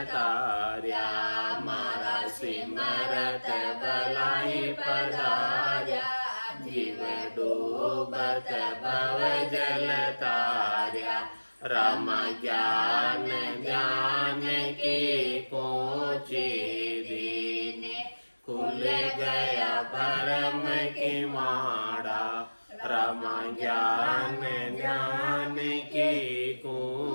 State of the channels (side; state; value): both; inverted; correlation -1.00